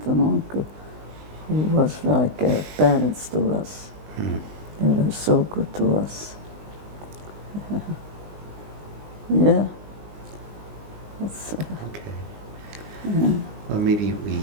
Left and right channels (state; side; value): late; left; 20 ms